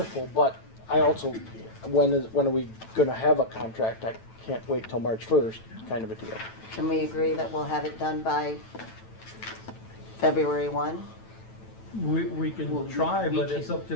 But I also, when are we gonna have a contract? I can't wait till March 1st, kind of a deal. Can we agree that we'll have it done by February 1? We can Well, try, we but can- it's up to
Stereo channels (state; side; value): late; right; 9.1 ms